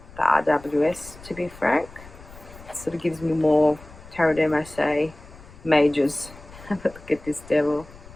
the RWS, to be frank. It sort of gives me more Tarot de Marseille majors. Have a look at this devil.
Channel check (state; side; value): noise; left; rumble, 20 dB below the sound